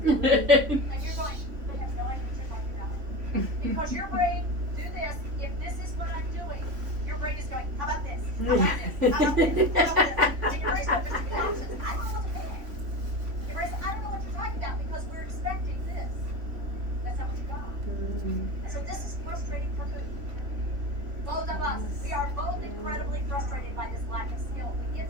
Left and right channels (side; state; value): left; late; 3.5 ms